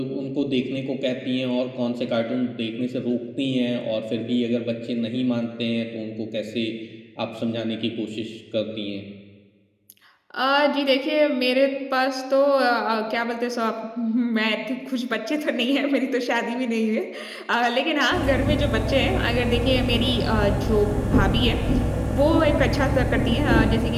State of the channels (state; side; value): identical; both; correlation 1.00